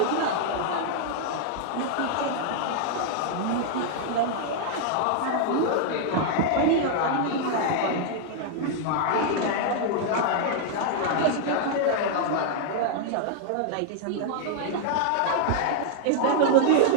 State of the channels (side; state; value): both; different; correlation -0.01